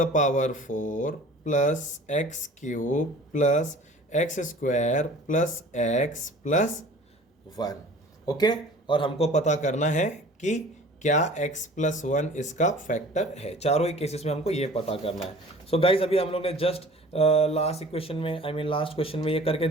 power 4 plus x cube plus x square plus x plus 1। Okay, और हमको पता करना है कि क्या x प्लस वन इसका फैक्टर है। चारों ही केसेस में हमको ये पता करना है। सो गाइज अभी हम लोग ने जस्ट लास्ट क्वेश्चन में ये करके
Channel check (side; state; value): both; normal; correlation 0.45